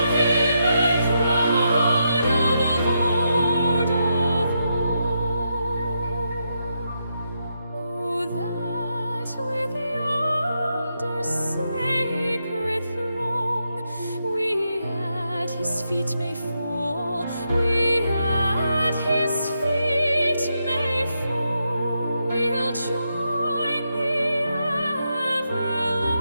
him, and crown the Lord of all. Oh, that with yonder sacred throng we at his feet may fall, we at his feet may fall, we'll join the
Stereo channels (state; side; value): inverted; both; correlation -0.83